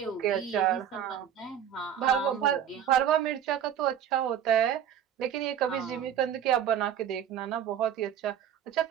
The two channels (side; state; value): left; quieter; 9.4 dB